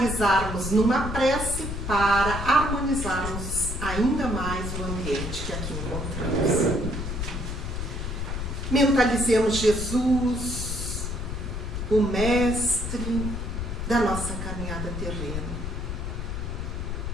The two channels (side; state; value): left; noise; rumble, 4 dB below the sound